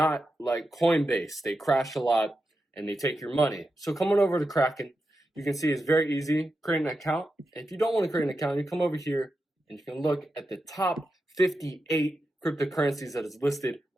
like Coinbase. They crash a lot and they take your money. So coming over to Kraken, you can see it's very easy. Create an account. If you don't want to create an account, you come over here and you can look at the top 58 cryptocurrencies that is listed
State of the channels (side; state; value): both; normal; correlation 0.89